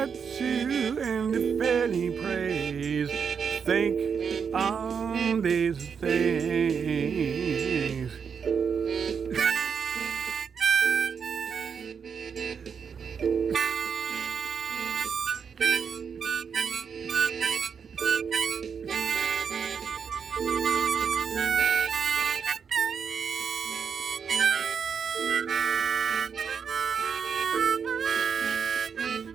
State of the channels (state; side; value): quieter; left; 6.6 dB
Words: and if any praise, think on these things.